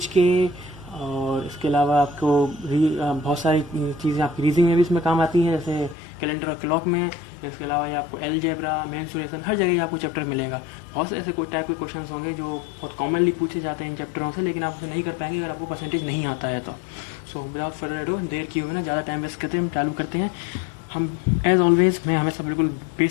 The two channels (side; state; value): right; drops out; at 6.0 s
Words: के, और इसके अलावा आपको बहुत सारी चीज़ें आपकी रीजनिंग में भी इसमें काम आती हैं, जैसे कैलेंडर और क्लॉक में। इसके अलावा ये आपको एलजेब्रा, मेंसुरेशन, हर जगह आपको चैप्टर मिलेगा। बहुत से ऐसे कोई टाइप के क्वेश्चन होंगे जो बहुत कॉमनली पूछे जाते हैं इन चैप्टरों से, लेकिन आप उसे नहीं कर पाएंगे अगर आपको परसेंटेज नहीं आता है तो। सो विदाउट फर्दर अडू, देर किए हुए ना ज़्यादा टाइम वेस्ट करते हैं, हम चालू करते हैं। हम एज ऑलवेज मैं हमेशा बिल्कुल